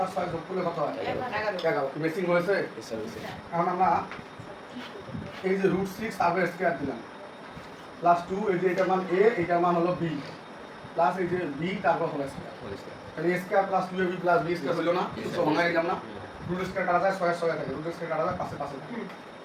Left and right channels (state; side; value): identical; both; correlation 1.00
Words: আর 6 যোগ করলে কত হয়? 11। মেসিং হয়েছে। এখন আমরা এই যে √6 তারপর স্কয়ার দিলাম প্লাস 2, এই যে এটার মান a, এটার মান হলো b, প্লাস এই যে b তারপর হোল স্কয়ার। তাহলে a square plus 2ab plus b square হলো না? তো ভাঙায় নিলাম না, রুট স্কয়ার কাটা যায় 6 এর 6 থাকে, রুট স্কয়ার কাটা যায় 5 এর 5 থাকে।